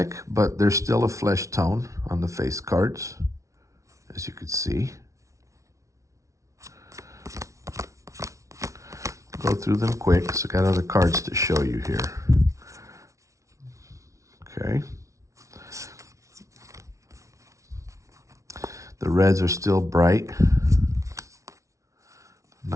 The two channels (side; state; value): left; late; 0.15 ms